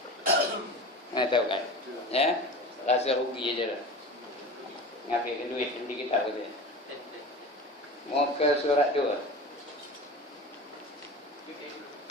Tahu kan? Ya? Rasa rugi aja lah. Ngambil duit di kitab tu. Mau ke surat 2.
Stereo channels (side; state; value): both; normal; correlation 0.33